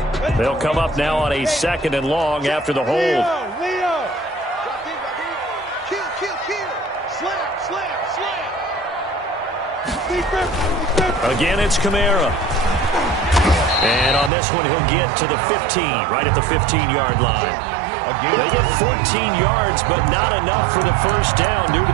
They'll come up now on a 2nd and long after the hold. Leo. Kill. Slam. Again, it's Camara. And on this one, he'll get to the 15, right at the 15-yard line. They get 14 yards, but not enough for the first down due to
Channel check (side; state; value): left; drops out; at 14.3 s